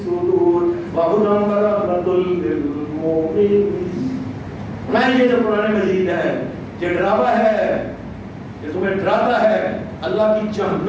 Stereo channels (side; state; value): both; identical; correlation 1.00